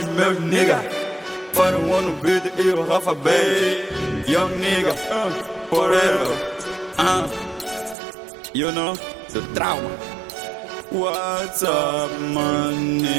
meus nigga. Para o ano beat e o Rafa Bay. Young nigga, forever. You know, the trauma. What's up, my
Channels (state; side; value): drops out; left; at 8.0 s